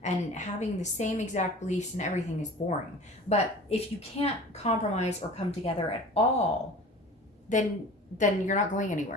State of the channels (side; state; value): both; normal; correlation 0.41